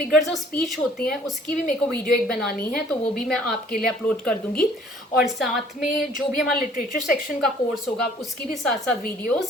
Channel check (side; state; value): both; normal; correlation 0.56